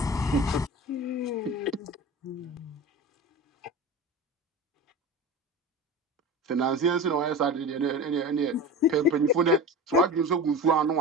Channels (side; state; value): both; normal; correlation 0.31